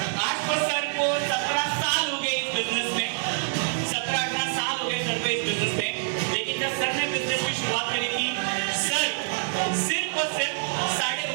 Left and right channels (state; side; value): silent; left; 61 dB below the other